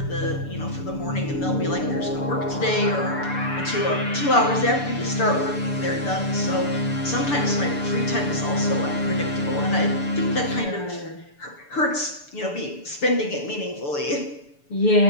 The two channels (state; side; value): late; right; 6.9 ms